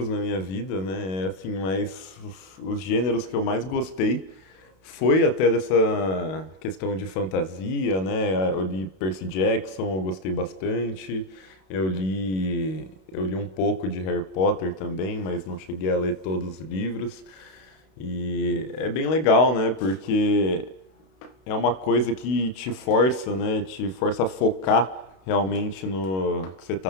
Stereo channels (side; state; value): right; late; 32 ms